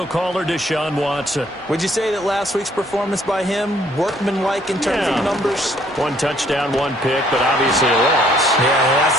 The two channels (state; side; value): normal; both; correlation 0.64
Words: caller, Deshaun Watson. Would you say that last week's performance by him, workmanlike in terms of numbers? 1 touchdown, 1 pick, but obviously a loss. Yeah, that's